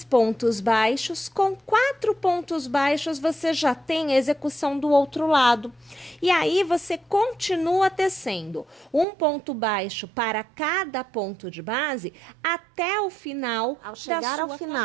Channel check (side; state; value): left; drops out; at 9.1 s